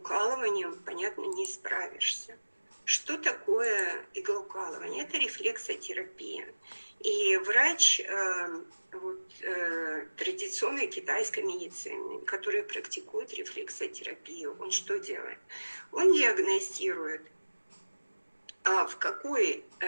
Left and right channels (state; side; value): inverted; both; correlation -1.00